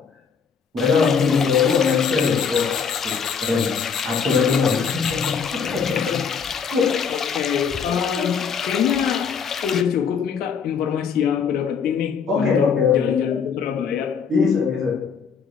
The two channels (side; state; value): right; quieter; 6.4 dB